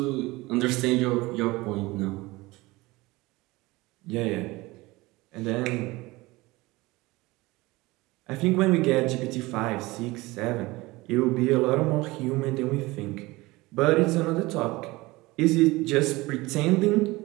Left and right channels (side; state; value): left; quieter; 21.2 dB